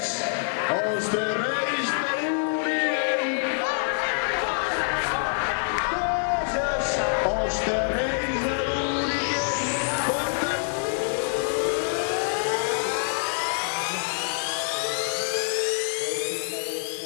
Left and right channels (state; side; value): silent; right; digital silence